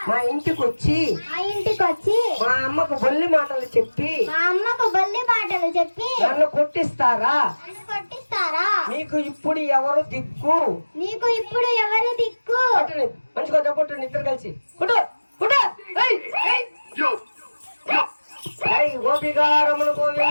మా ఇంటికి వచ్చి మా ఇంటికి వచ్చి మా అమ్మకు బొల్లి మాటలు చెప్పి మా అమ్మకు బొల్లి మాటలు చెప్పి నన్ను కొట్టిస్తారా? నన్ను కొట్టిస్తారా? మీకు ఇప్పుడు ఎవరు దిక్కు? నీకు ఇప్పుడు ఎవరు దిక్కు? కొట్టండి, మంచిగా కొట్టండి ఇద్దరు కలిసి. కొట్టు కొట్టు. ఏయ్, ఏయ్. ఏయ్, గోపికారములు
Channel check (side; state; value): both; inverted; correlation -1.00